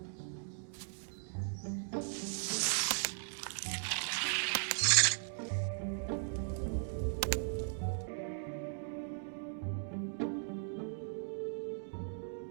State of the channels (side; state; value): left; silent; digital silence